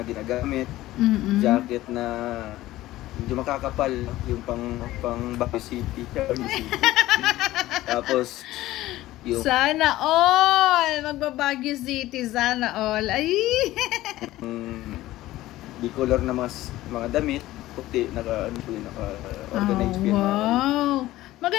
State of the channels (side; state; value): right; quieter; 16.1 dB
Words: ginagamit. Jacket na medyo makakapal, no? Yung pang Baguio City. Tapos, yung... Sana all! Magbabaguio City, sana all. Ay! Di color na mga damit, puti, naka-organized yan. Wow!